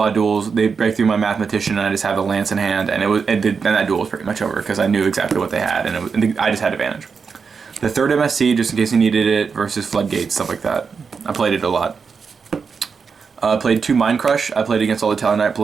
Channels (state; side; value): quieter; left; 5.6 dB